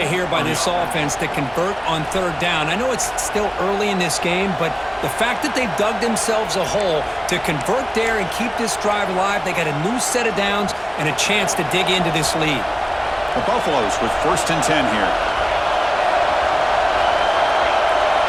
here by this offense to convert on 3rd down. I know it's still early in this game, but the fact that they've dug themselves a hole to convert there and keep this drive alive, they got a new set of downs and a chance to dig into this lead. The Buffaloes with 1st and 10 here.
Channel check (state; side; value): identical; both; correlation 1.00